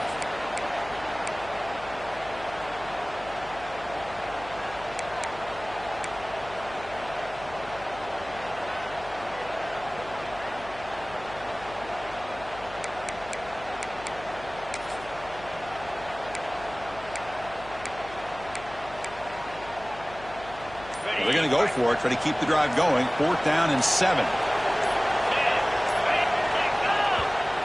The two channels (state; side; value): noise; left; hum, 17 dB below the sound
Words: They're going to go for it, try to keep the drive going. 4th down and 7.